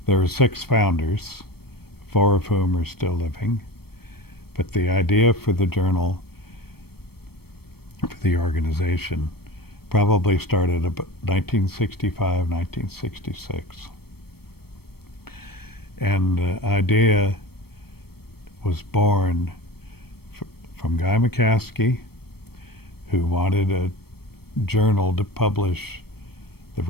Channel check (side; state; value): right; late; 0.96 ms